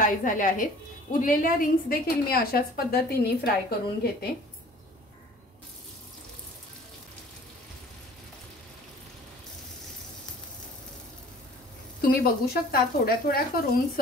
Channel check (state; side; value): normal; both; correlation 0.49